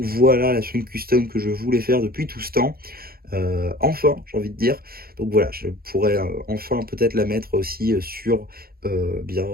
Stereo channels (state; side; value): late; left; 0.44 ms